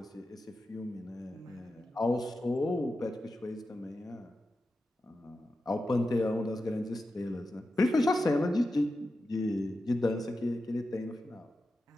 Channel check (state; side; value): normal; both; correlation 0.91